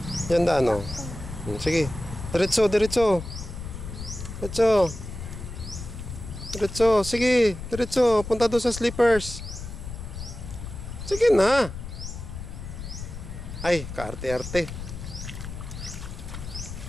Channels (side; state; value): left; noise; rumble, 9 dB below the sound